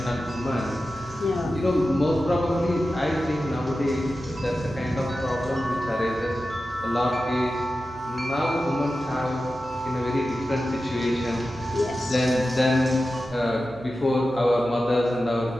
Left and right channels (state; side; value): noise; right; hum, 20 dB below the sound